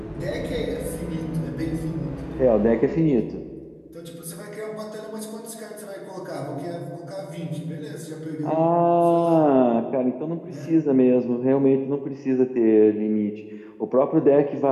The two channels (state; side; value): identical; both; correlation 1.00